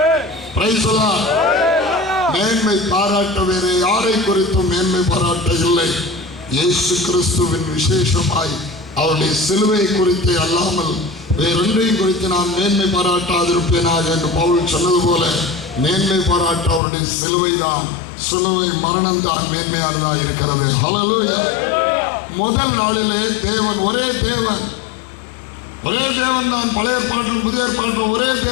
Praise the Lord. மேன்மை பாராட்ட வேறு யாரை குறித்தும் மேன்மை பாராட்ட இல்லை. இயேசு கிறிஸ்துவின் விசேஷமாய் அவருடைய சிலுவை குறித்து அல்லாமல் வேறொன்றையும் குறித்து நான் மேன்மை பாராட்டாதிருப்பேனாக என்று பவுல் சொன்னது போல மேன்மை பாராட்ட அவருடைய சிலுவை தான், சிலுவை மரணம் தான் மேன்மையானதாக இருக்கிறது. ஹல்லேலூயா. முதல் நாளிலே தேவன் ஒரே தேவன் தான். பழைய ஏற்பாட்டிலும் புதிய ஏற்பாட்டிலும் ஒரே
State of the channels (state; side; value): drops out; right; at 16.8 s